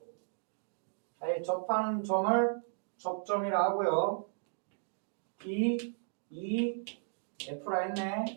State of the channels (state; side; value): silent; left; digital silence